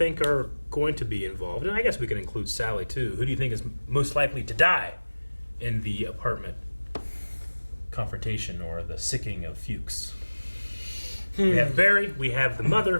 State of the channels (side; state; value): both; inverted; correlation -1.00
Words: are going to be involved, and I guess we can include Sally too, who do you think is most likely to die in the apartment confrontation or the sicking of Fuchs? We have Barry, we have the